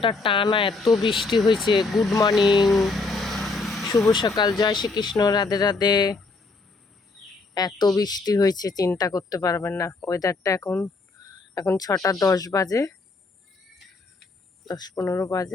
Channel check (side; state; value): right; quieter; 3.7 dB